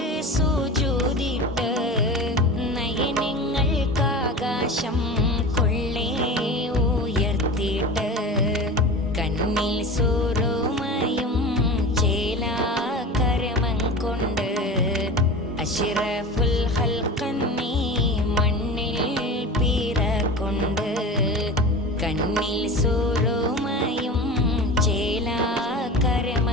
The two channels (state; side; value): normal; both; correlation 0.32